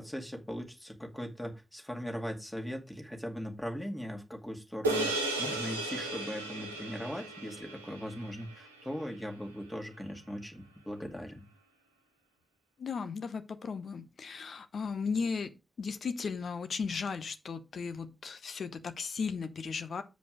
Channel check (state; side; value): normal; both; correlation 0.68